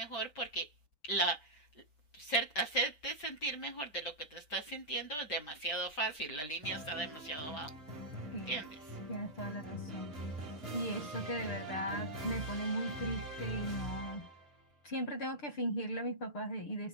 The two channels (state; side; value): late; right; 6.7 ms